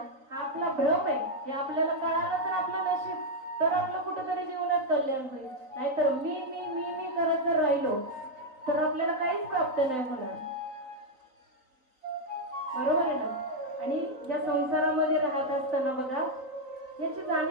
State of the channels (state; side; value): late; left; 3.9 ms